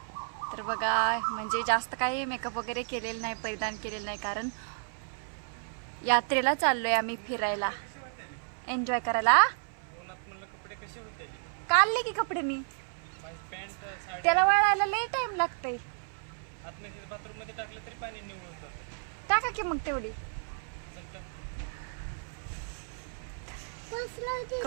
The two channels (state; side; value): silent; left; 56 dB below the other